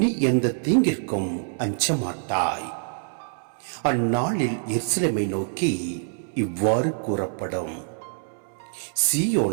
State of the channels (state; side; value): silent; left; 62 dB below the other